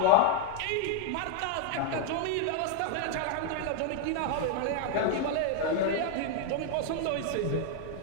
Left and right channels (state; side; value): different; both; correlation 0.01